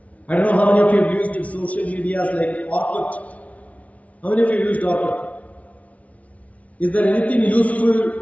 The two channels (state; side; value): late; right; 0.067 ms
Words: I don't know how many of you have used social medias like Orkut. How many of you used Orkut? Is there anything useful